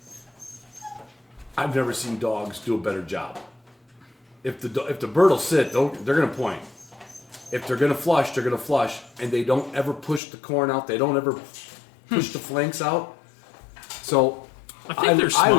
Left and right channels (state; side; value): drops out; right; at 10.2 s